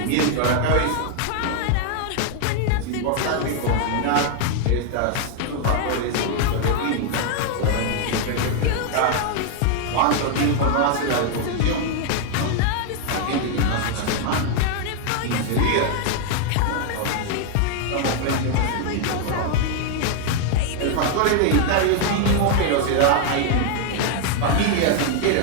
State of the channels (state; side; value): different; both; correlation 0.00